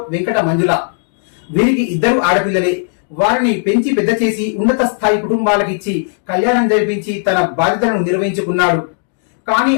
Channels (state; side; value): silent; right; 69 dB below the other